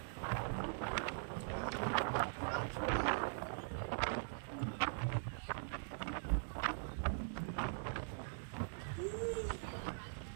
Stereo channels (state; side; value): silent; left; digital silence